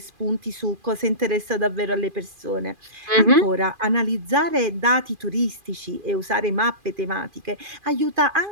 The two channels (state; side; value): late; left; 2.4 ms